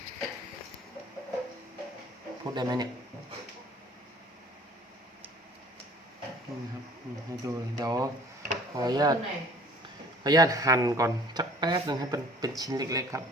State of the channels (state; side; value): normal; both; correlation 0.51